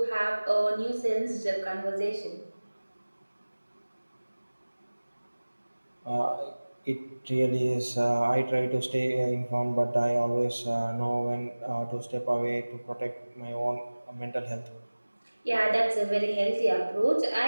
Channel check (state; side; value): inverted; both; correlation -1.00